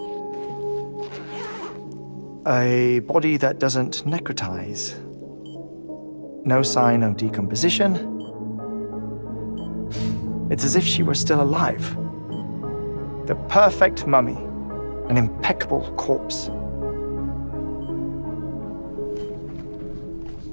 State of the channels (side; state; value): both; inverted; correlation -1.00